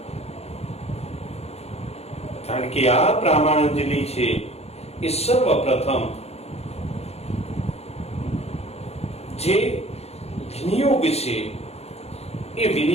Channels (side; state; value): right; late; 0.30 ms